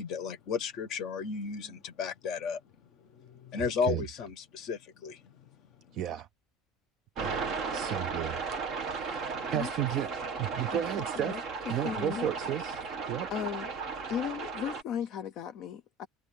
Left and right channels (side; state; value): both; normal; correlation 0.35